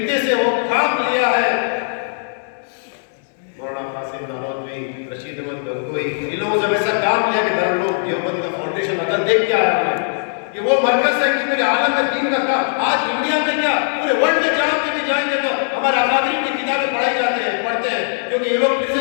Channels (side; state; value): right; silent; digital silence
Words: سے وہ کام لیا ہے. مولانا قاسم نانوتوی، رشید احمد گنگوئی، ان لوگوں سے ایسا کام لیا کہ دارالعلوم دیوبند کا فاؤنڈیشن اگر دیکھ کے آیا ہے کہ وہ مرکز ہے کہ میرے عالم میں دین کا کام. آج انڈیا میں کیا پورے ورلڈ میں جہاں پہ بھی جائیں گے تو ہمارے اکابرین کی کتابیں پڑھائی جاتے ہیں، پڑھتے ہیں، کیونکہ یہ لوگ پھر